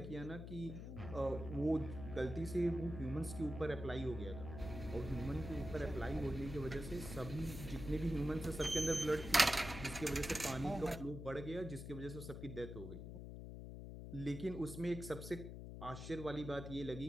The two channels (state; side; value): noise; left; hum, 8 dB below the sound